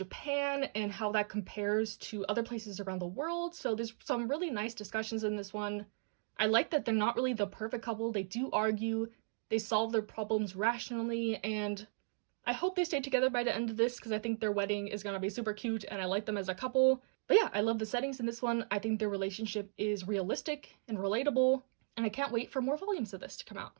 and how that compares to other places around the world. So there's some really nice discussions in this one. I like that they're not really the perfect couple. They do argue, they solve their problems rationally, and I hope they stay together by the end of this because I think their wedding is gonna be super cute and I like them as a couple. But yeah, I love the settings in this one. I think their relationship is realistic and relatable, and I can't wait for more volumes of this to come out.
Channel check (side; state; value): left; silent; digital silence